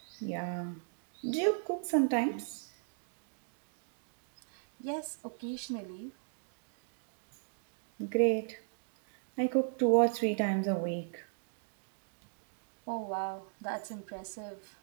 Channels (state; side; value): silent; left; digital silence